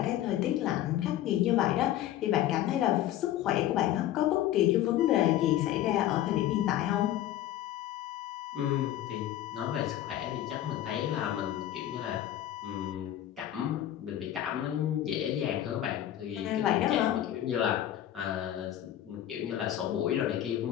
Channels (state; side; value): quieter; right; 12.4 dB